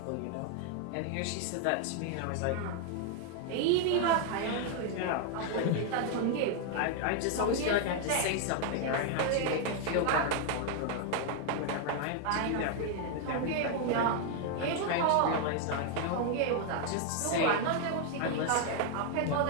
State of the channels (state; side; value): different; both; correlation 0.00